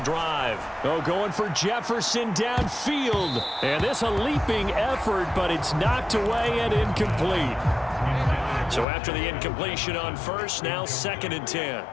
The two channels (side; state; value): right; drops out; at 8.8 s